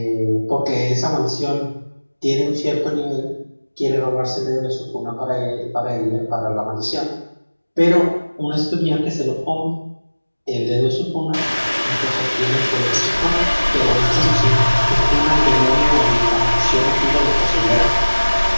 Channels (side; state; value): both; inverted; correlation -1.00